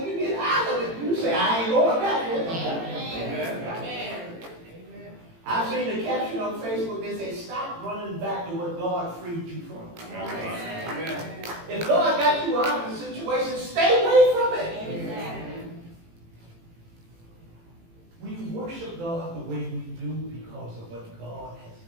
you get out of it, you say, I ain't going back there. I've seen the caption on Facebook, they say, stop running back to what God freed you from. If God got you out of the situation, stay away from it. We worship God the way we do because of what God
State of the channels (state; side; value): late; left; 18 ms